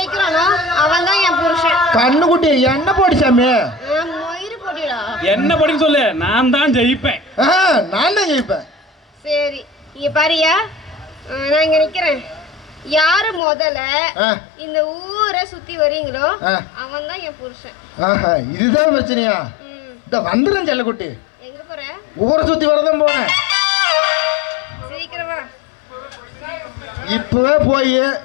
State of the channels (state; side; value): drops out; right; at 13.4 s